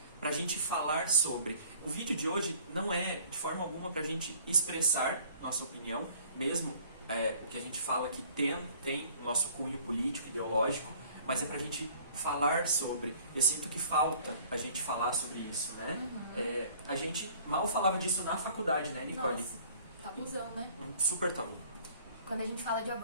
pra gente falar sobre. O vídeo de hoje não é de forma alguma pra gente expressar nossa opinião, mesmo que a gente fala que tem o nosso cunho político, ideológico, mas é pra gente falar sobre. Eu sinto que falta a gente falar sobre isso, né? A gente mal falava disso na faculdade, né, Nicole? Nossa, tabuzão, né? Um super tabu. Quando a gente fala de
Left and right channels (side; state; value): both; inverted; correlation -0.54